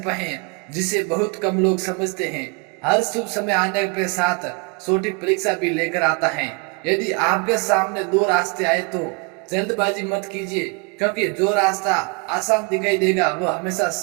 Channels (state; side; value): quieter; left; 32.4 dB